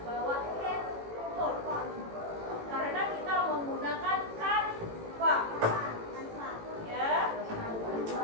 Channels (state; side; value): late; left; 18 ms